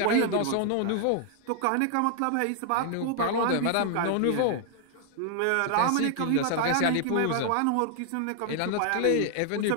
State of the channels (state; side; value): different; both; correlation 0.00